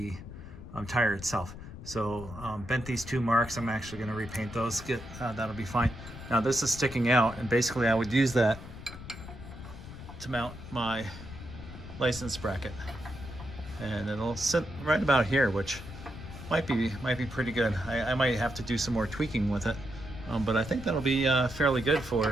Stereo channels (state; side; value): noise; left; rumble, 13 dB below the sound